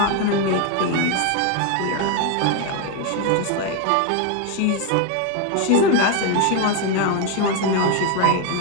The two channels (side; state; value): both; different; correlation 0.01